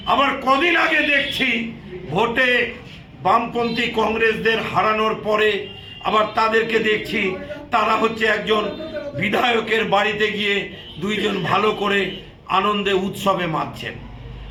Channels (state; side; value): identical; both; correlation 1.00